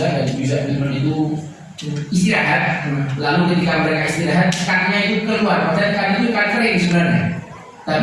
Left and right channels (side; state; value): both; identical; correlation 1.00